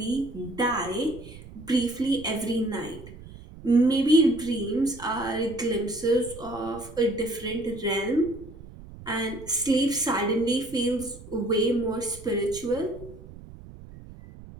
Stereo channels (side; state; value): right; noise; rumble, 17 dB below the sound